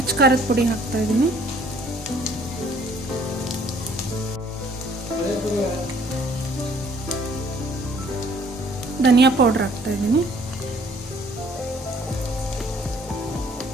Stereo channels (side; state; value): both; normal; correlation 0.59